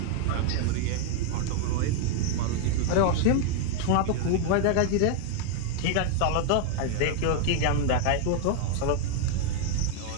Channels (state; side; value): different; both; correlation 0.00